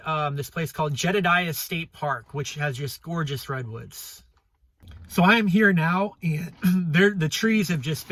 this place called Jedediah State Park, which has just gorgeous redwoods. So I am here now, and the trees have just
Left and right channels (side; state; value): both; identical; correlation 1.00